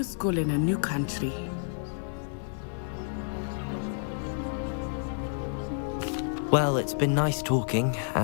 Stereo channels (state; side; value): silent; right; digital silence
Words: school in a new country. Well, it's been nice talking